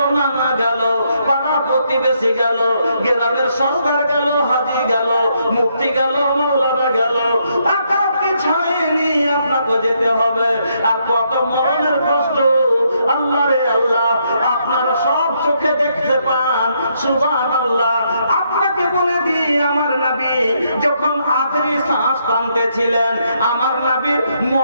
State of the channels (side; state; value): both; inverted; correlation -0.75